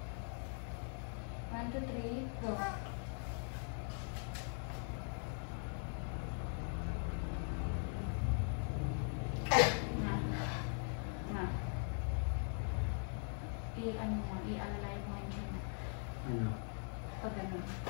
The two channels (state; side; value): silent; right; 50 dB below the other